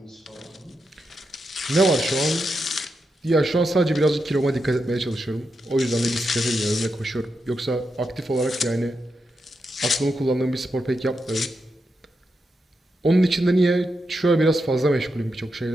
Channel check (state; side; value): normal; both; correlation 0.86